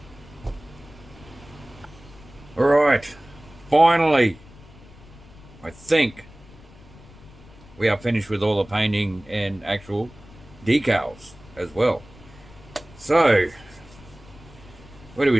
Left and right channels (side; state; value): left; noise; rumble, 21 dB below the sound